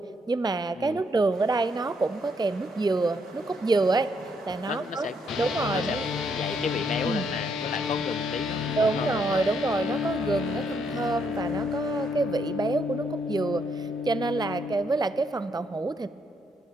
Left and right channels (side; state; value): both; normal; correlation 0.73